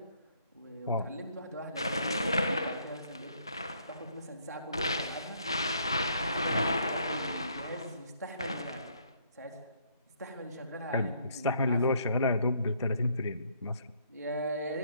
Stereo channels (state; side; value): inverted; both; correlation -0.66